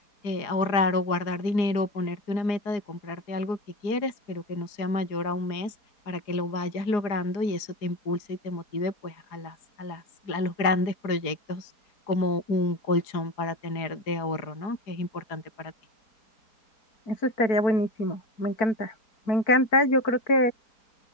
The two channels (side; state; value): right; late; 4.8 ms